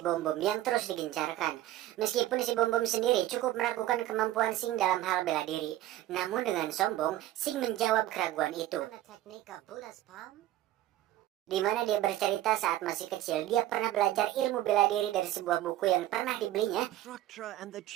Bom Bom yang terus digencarkan. Meskipun si Bom Bom sendiri cukup meragukan kemampuan Sing dalam hal bela diri. Namun dengan sombong, Sing menjawab keraguan itu. Di mana dia bercerita saat masih kecil, dia pernah belajar ilmu bela diri dari sebuah buku yang pernah dibelinya. Structure and the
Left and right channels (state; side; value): quieter; left; 14.2 dB